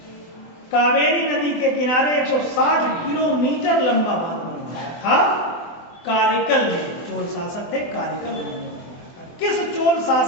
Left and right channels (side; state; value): right; late; 24 ms